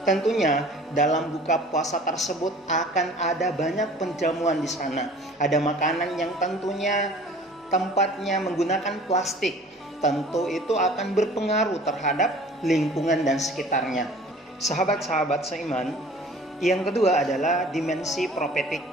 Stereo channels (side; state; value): both; normal; correlation 0.48